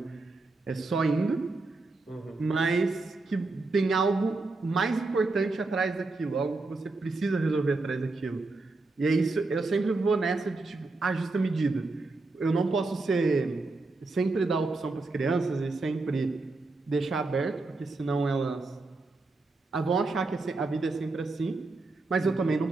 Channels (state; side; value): quieter; left; 3.5 dB